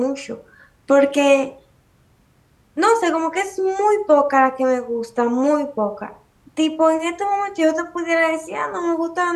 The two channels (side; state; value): both; identical; correlation 1.00